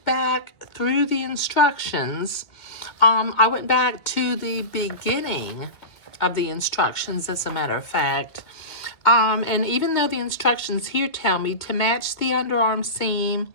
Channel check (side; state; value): right; late; 2.2 ms